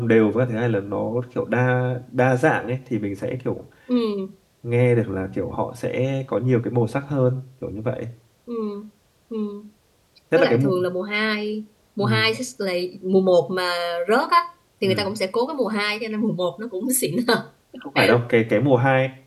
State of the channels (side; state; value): both; identical; correlation 1.00